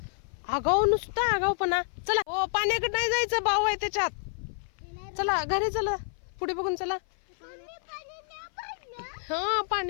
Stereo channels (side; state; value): right; silent; 56 dB below the other